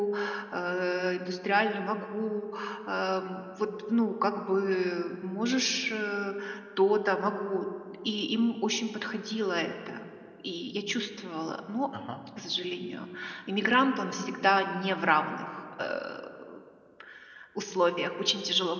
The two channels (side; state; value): both; identical; correlation 1.00